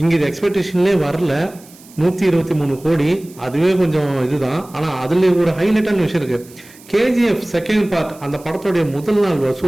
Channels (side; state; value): right; noise; hiss, 24 dB below the sound